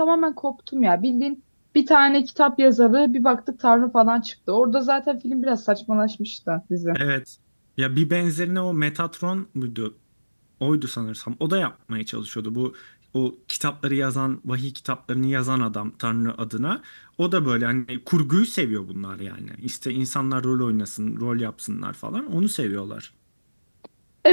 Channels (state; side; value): inverted; both; correlation -1.00